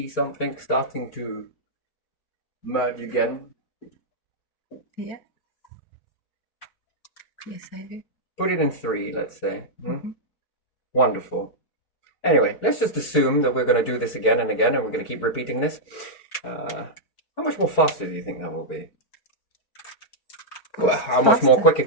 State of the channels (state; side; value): late; right; 4.6 ms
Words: something starting to merge again? Yeah. Yes, I do. Put it in 3, let's say. Mm-hmm. Wonderful. Anyway, let's just assume that we're going to do this again and again, and we're going to keep repeating this. How much more faster do you think that will be? Well, how much more quicker